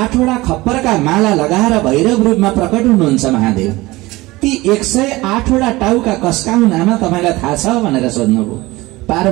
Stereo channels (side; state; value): left; quieter; 20.2 dB